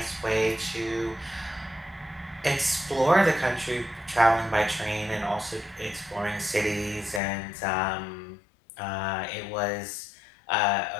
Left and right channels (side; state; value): right; drops out; at 7.2 s